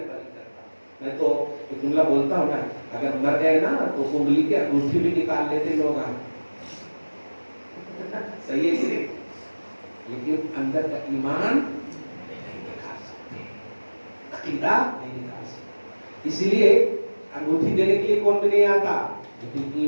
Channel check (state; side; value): inverted; both; correlation -1.00